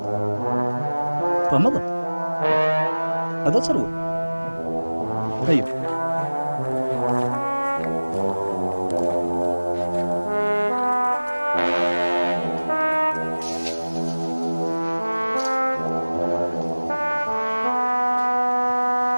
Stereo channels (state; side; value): inverted; both; correlation -1.00